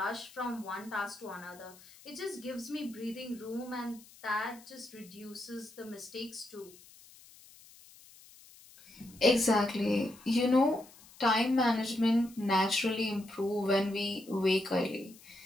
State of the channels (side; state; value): left; noise; hiss, 22 dB below the sound